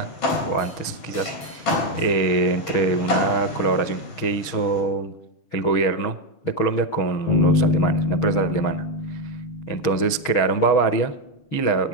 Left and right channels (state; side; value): late; right; 6.4 ms